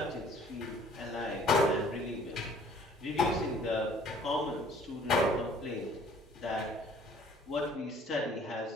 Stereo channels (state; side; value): normal; both; correlation 0.55